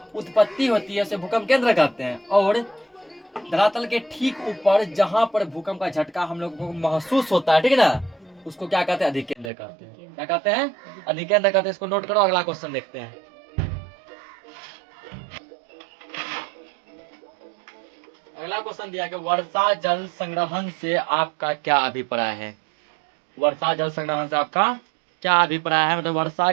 उत्पत्ति होती है उसे भूकंप केंद्र कहते हैं। और धरातल के ठीक ऊपर जहां पर भूकंप का झटका हम लोग को महसूस होता है, ठीक है ना, उसको क्या कहते हैं, अधिकेंद्र कहते हैं। क्या कहते हैं, अधिकेंद्र कहते हैं। इसको नोट करो, अगला क्वेश्चन देखते हैं। अगला क्वेश्चन दिया कि वर्षा जल संग्रहण से आपका क्या अभिप्राय है। वर्षा जल संग्रहण से आपका क्या अभिप्राय है, मतलब वर्षा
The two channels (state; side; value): drops out; left; at 9.5 s